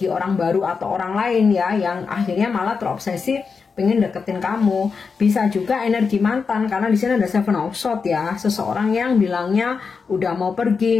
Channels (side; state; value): right; quieter; 5.3 dB